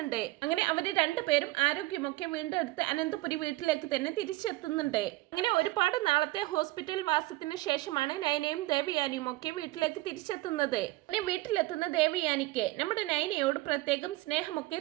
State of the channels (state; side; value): quieter; left; 19.3 dB